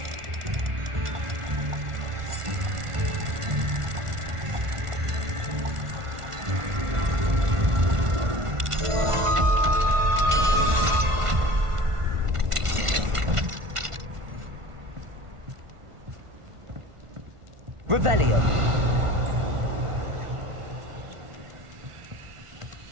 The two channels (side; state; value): left; late; 1.5 ms